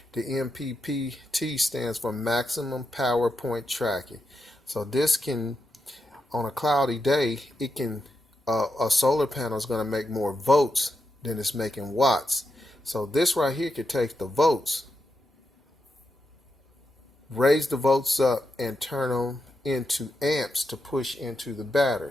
The MPPT stands for maximum power point tracking. So this can, on a cloudy day, it can, a solar panel is going to make more volts than it's making watts. So this right here could take the volts, raise the volts up, and turn them into amps to push into the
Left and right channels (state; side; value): normal; both; correlation 0.85